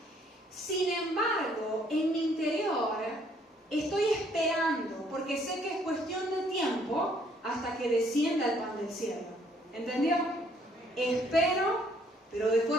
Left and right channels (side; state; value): both; normal; correlation 0.65